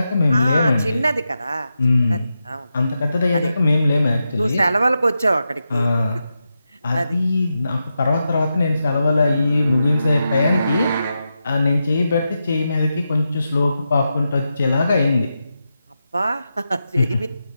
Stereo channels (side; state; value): both; inverted; correlation -0.88